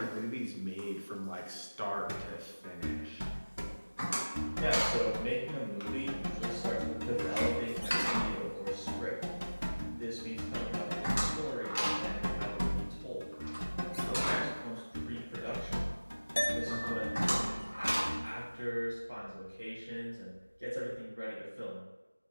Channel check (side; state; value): both; inverted; correlation -1.00